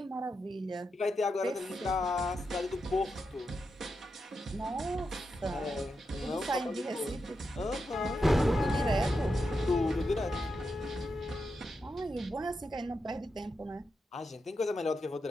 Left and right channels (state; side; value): normal; both; correlation 0.86